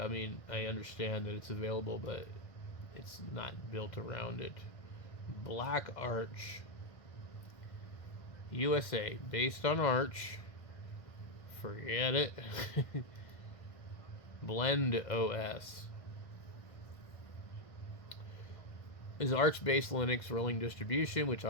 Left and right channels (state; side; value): late; right; 1.6 ms